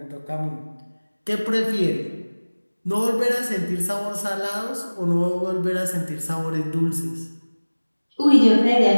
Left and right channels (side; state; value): both; inverted; correlation -1.00